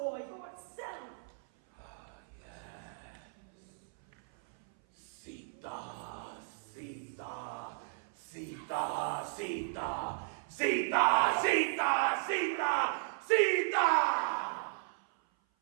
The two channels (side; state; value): left; silent; 54 dB below the other